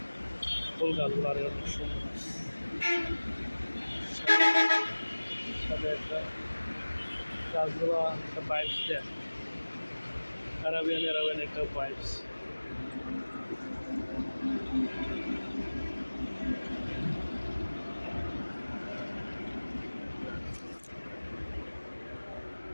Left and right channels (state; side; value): inverted; both; correlation -1.00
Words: ফুল গাছগুলো আর অনেক সুন্দর। সাথে একটা গাছগুলো একটা বাইকস দেয়, অ্যারাবিয়ান একটা বাইকস।